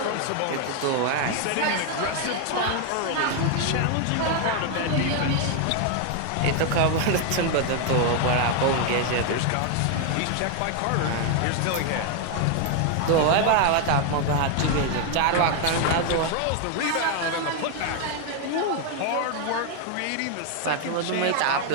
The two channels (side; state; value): both; different; correlation 0.01